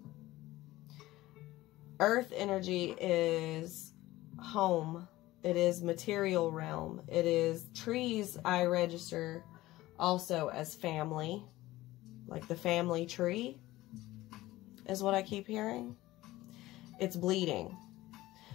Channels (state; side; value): quieter; right; 17.3 dB